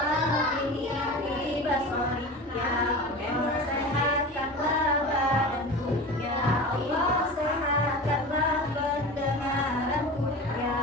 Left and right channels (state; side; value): normal; both; correlation 0.32